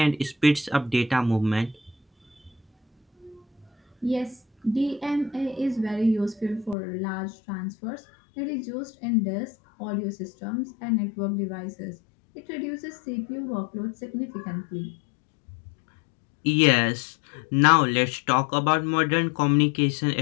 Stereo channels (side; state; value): right; drops out; at 6.8 s